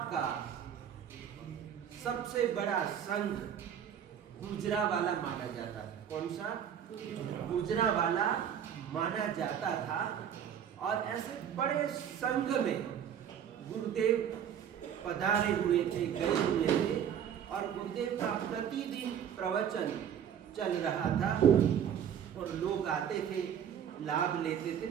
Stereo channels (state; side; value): quieter; left; 8.9 dB